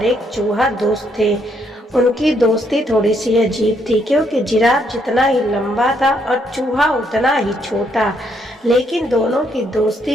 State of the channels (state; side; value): normal; both; correlation 0.73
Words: एक चूहा दोस्त थे। उनकी दोस्ती थोड़ी सी अजीब थी, क्योंकि जिराफ जितना ही लंबा था और चूहा उतना ही छोटा, लेकिन दोनों की